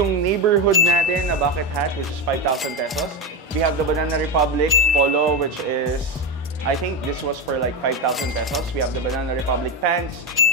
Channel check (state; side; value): normal; both; correlation 0.15